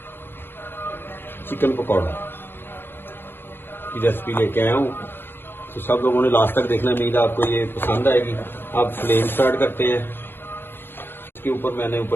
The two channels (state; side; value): late; right; 0.10 ms